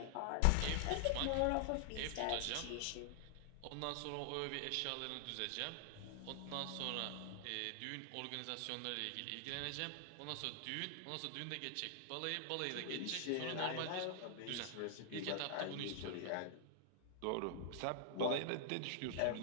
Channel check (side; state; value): both; different; correlation 0.00